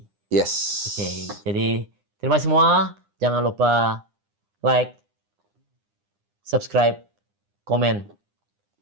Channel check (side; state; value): left; late; 9.9 ms